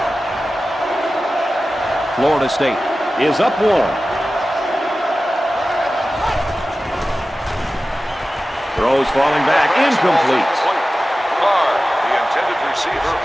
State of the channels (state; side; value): normal; both; correlation 0.95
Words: Florida State is up 1. Throws falling back, incomplete. Carr, the intended receiver,